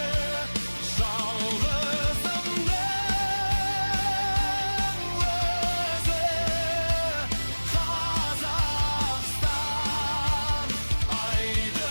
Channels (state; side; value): inverted; both; correlation -1.00